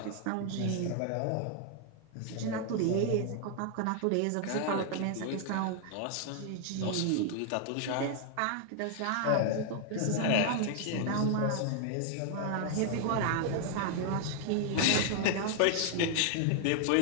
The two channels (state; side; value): different; both; correlation 0.00